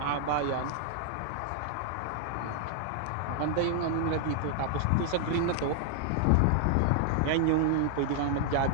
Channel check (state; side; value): different; both; correlation 0.00